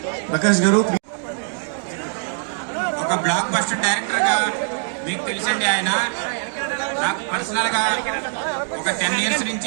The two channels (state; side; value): silent; left; 64 dB below the other